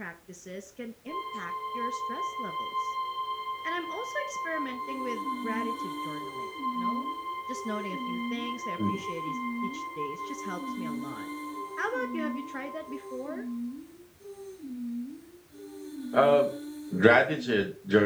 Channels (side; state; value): both; identical; correlation 1.00